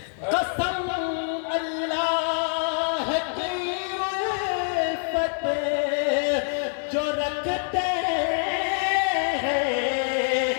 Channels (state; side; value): silent; right; 61 dB below the other